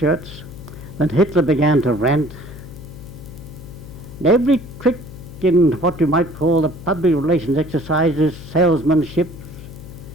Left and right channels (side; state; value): left; noise; hum, 15 dB below the sound